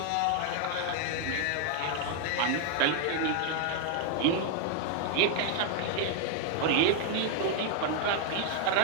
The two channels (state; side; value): different; both; correlation 0.00